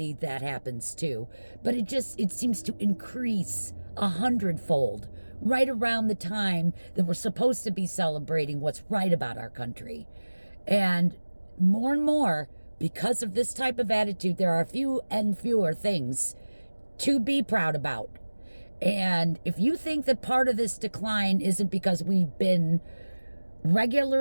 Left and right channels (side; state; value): both; inverted; correlation -1.00